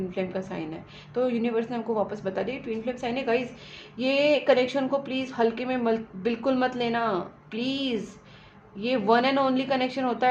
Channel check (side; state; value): both; identical; correlation 1.00